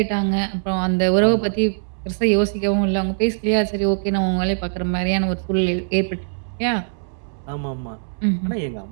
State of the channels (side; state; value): left; silent; digital silence